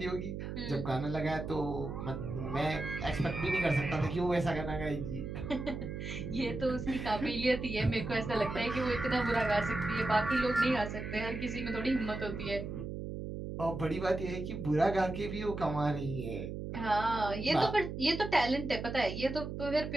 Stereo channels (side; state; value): right; noise; hum, 6 dB below the sound